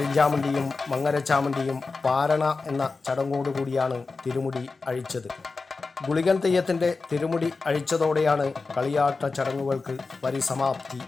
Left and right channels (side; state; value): right; quieter; 4.1 dB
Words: മങ്ങരച്ചാമുണ്ടിയും പാരണ എന്ന ചടങ്ങോടുകൂടിയാണ് തിരുമുടി അഴിച്ചത്. ഗുളികൻ തെയ്യത്തിൻ്റെ തിരുമുടി അഴിച്ചതോടെയാണ് കളിയാട്ട ചടങ്ങുകൾക്ക് പരിസമാപ്തി